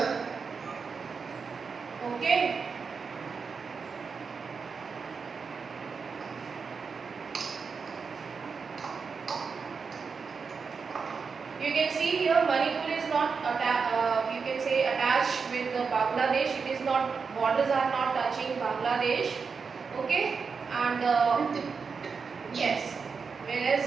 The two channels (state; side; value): quieter; left; 5.3 dB